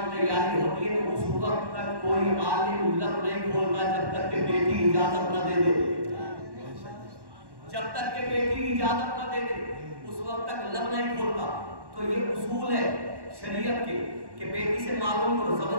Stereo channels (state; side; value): late; left; 1.1 ms